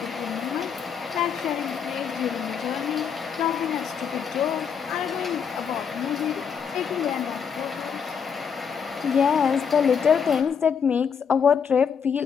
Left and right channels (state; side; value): quieter; right; 6.9 dB